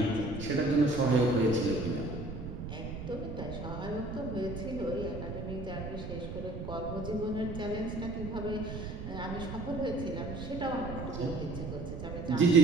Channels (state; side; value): noise; right; rumble, 7 dB below the sound